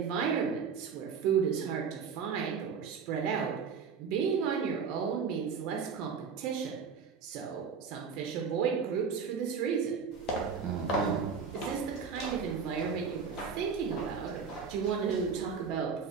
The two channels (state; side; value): quieter; left; 6.0 dB